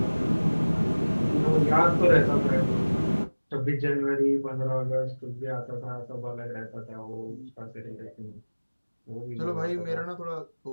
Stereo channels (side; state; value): both; inverted; correlation -1.00